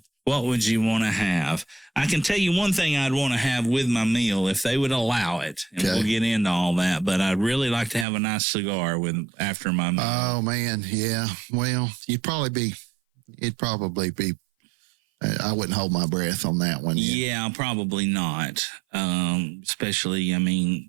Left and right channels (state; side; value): drops out; left; at 8.1 s